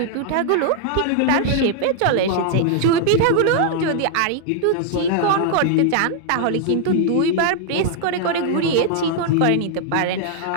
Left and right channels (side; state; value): both; different; correlation -0.01